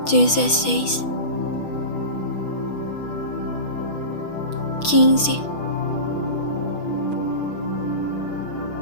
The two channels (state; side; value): late; right; 6.3 ms